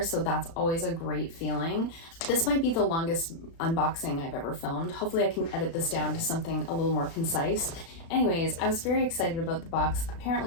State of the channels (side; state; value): right; late; 36 ms